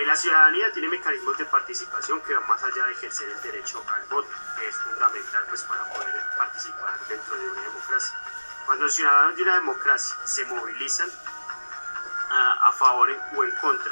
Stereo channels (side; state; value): both; inverted; correlation -1.00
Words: La ciudadanía tiene mecanismos de participación que van más allá de ejercer el derecho al voto, que es fundamental pues, para poder participar dentro de una democracia. Cuando los ciudadanos de una democracia se movilizan a favor o en